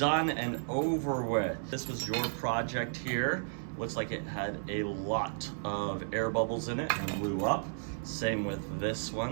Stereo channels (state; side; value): silent; left; digital silence